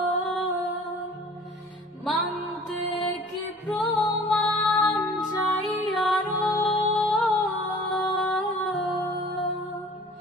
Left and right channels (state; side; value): normal; both; correlation 0.48